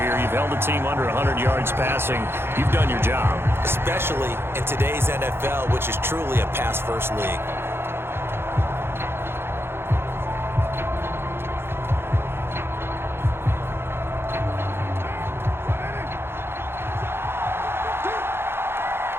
here. You've held the team under 100 yards passing. You've done your job. Especially in today's NFL, which is truly a pass-first league.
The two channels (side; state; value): left; late; 0.11 ms